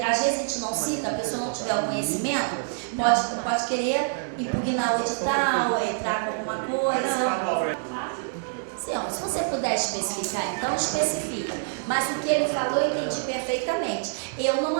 vezes a gente não cita, a pessoa não tiver o conhecimento, pode querer impugnar o edital, entrar com alguma coisa. Sim, ó, se você puder especificar, então especifica. Mas o que ele falou eu entendi perfeitamente. Eu não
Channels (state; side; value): silent; left; digital silence